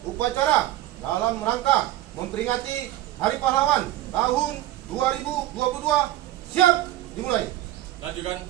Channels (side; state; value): left; quieter; 14.8 dB